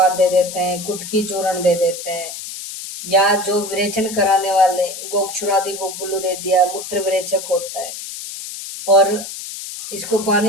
दे देते हैं, कुटकी चूर्ण दे देते हैं, या जो विरेचन कराने वाले गोक्षुरादि गोगुल्लू दे दिया, मूत्र विरेचक होता है। और इसको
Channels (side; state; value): left; noise; hiss, 9 dB below the sound